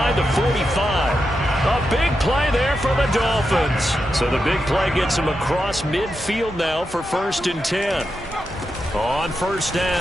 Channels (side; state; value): both; normal; correlation 0.87